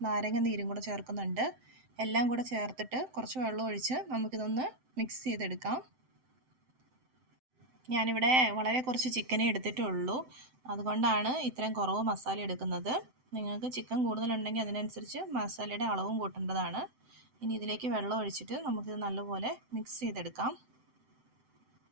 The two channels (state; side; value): late; left; 7.8 ms